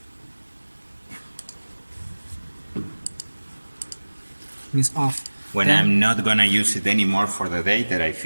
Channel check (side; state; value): both; inverted; correlation -1.00